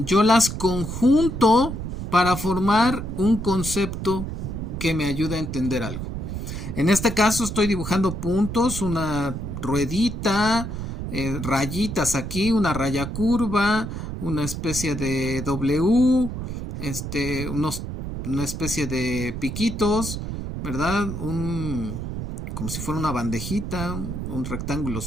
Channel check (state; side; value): noise; right; rumble, 6 dB below the sound